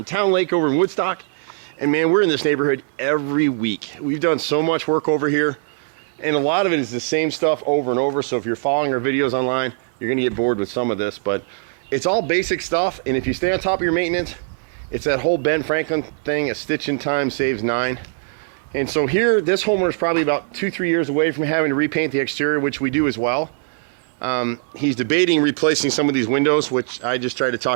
Town Lake over in Woodstock, and man, we're in this neighborhood every week. We've done so much work over here, and a lot of it is the same stuff over and over. So if you're following our videos online, you're gonna get bored with some of this, but it's all basic stuff. And if you stay on top of your maintenance, it's that whole Ben Franklin thing: a stitch in time saves 9. And so here, this homeowner is probably about 2-3 years away from having to repaint the exterior, which we do as well. He's debating replacing some of these windows, which I just tried to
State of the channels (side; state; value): left; silent; 62 dB below the other